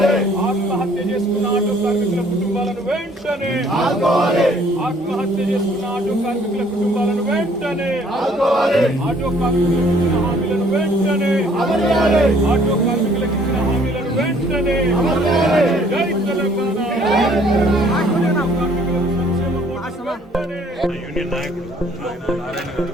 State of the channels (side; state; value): both; normal; correlation 0.60